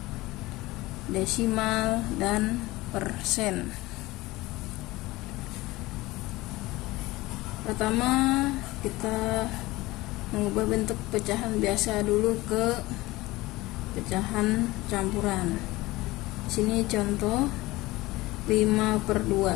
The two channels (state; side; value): quieter; right; 19.9 dB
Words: desimal, dan persen. Pertama, kita mengubah bentuk pecahan biasa dulu ke pecahan campuran. Sini contoh